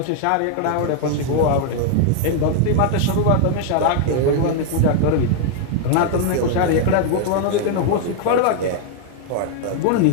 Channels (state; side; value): different; both; correlation 0.00